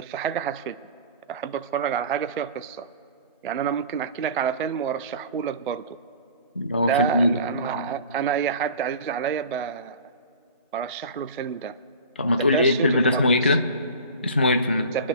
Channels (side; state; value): both; inverted; correlation -0.39